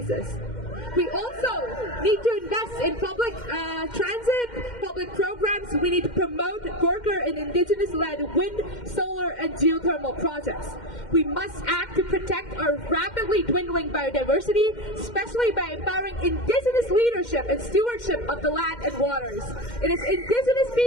We also need to invest in public transit, public programs. We need to promote worker and indigenous-led wind, solar, and geothermal projects. We must act to protect our rapidly dwindling biodiversity, especially by empowering indigenous leadership and stewardship of the land and waters. It is indigenous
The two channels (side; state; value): right; late; 2.1 ms